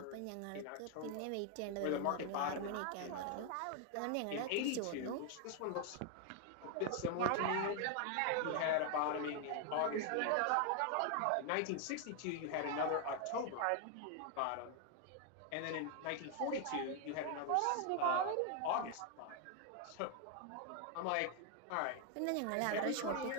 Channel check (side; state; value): both; different; correlation 0.00